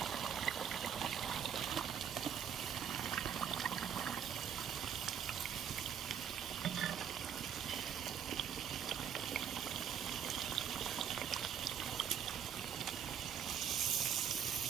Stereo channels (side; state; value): left; quieter; 8.3 dB